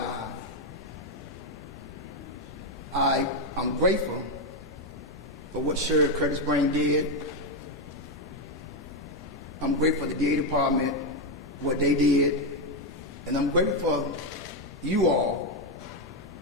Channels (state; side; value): normal; both; correlation 0.05